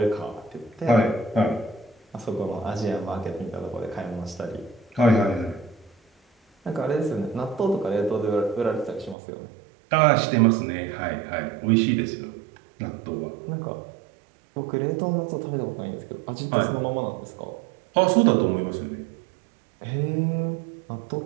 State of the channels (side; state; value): left; drops out; at 9.2 s